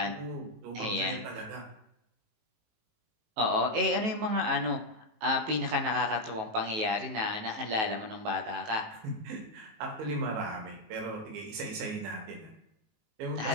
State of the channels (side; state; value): left; late; 19 ms